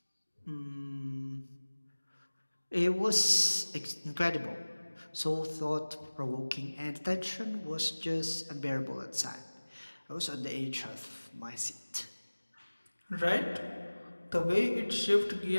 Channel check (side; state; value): both; inverted; correlation -1.00